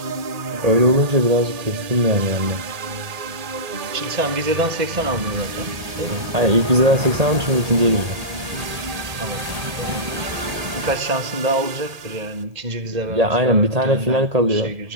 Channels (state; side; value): late; left; 1.8 ms